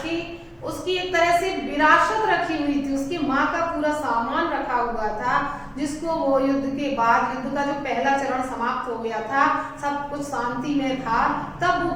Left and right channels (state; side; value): identical; both; correlation 1.00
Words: उसकी एक तरह से विरासत रखी हुई थी, उसकी माँ का पूरा सामान रखा हुआ था, जिसको वो युद्ध के बाद, युद्ध का जो पहला चरण समाप्त हो गया था, सब कुछ शांति में था, तब वो